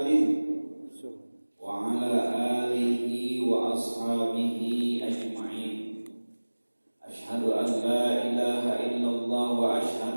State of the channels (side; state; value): both; inverted; correlation -1.00